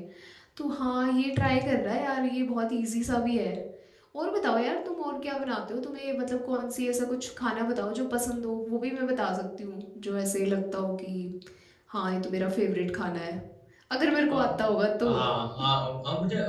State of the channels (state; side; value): identical; both; correlation 1.00